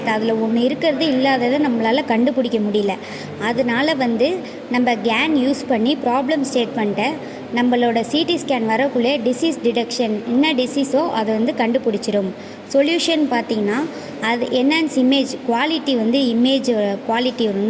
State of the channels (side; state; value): both; identical; correlation 1.00